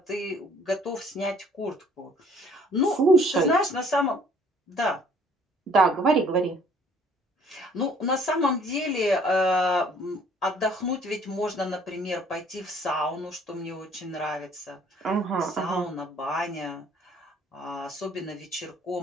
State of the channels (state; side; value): normal; both; correlation 0.58